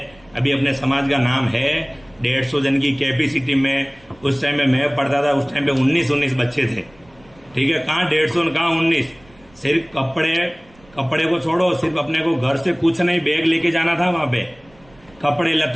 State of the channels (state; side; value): noise; right; rumble, 28 dB below the sound